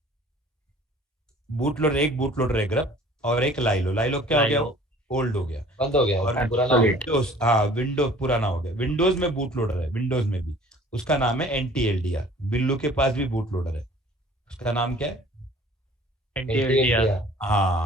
बूट लोडर, एक बूट लोडर है ग्रब, और एक लाइलो। लाइलो क्या हो गया? ओल्ड हो गया, बंद हो गया, और पुराना विंडोज, हाँ विंडोज पुराना हो गया। विंडोज में बूट लोडर है, विंडोज में भी, उसका नाम है NTLDR। बिल्लू के पास भी बूट लोडर है, उसका नाम क्या है? NTLDR।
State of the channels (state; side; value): normal; both; correlation 0.50